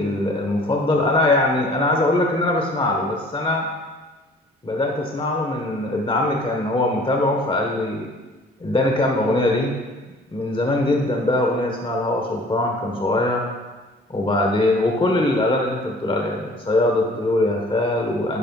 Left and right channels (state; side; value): normal; both; correlation 0.51